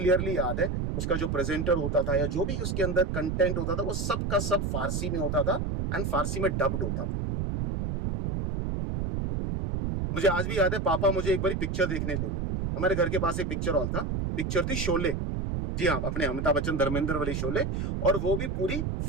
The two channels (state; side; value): noise; right; rumble, 1 dB below the sound